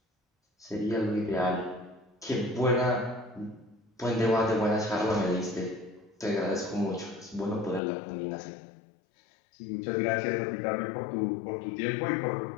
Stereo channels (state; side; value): drops out; right; at 7.8 s